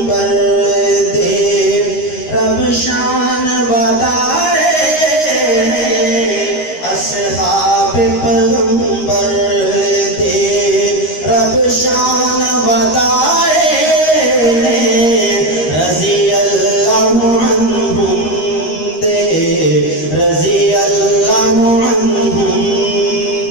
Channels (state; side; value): late; right; 13 ms